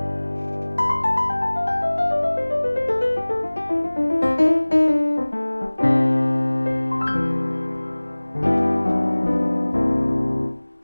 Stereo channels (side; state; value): both; inverted; correlation -1.00